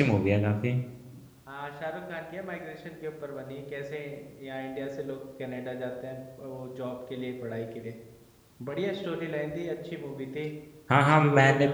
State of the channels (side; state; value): both; identical; correlation 1.00